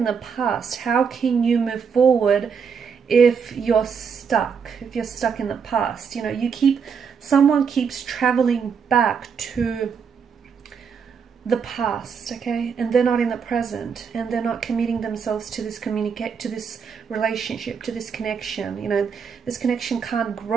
the past. How can you move forward if you're stuck? If you're stuck in the past, someone keeps traveling back to the past, okay, and they're not in the present, and they're not committing themselves to this to this relationship, to this connection. This connection can't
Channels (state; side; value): quieter; left; 6.4 dB